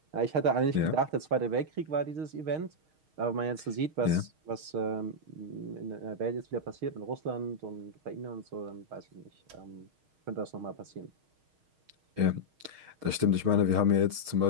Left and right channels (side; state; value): left; late; 6.4 ms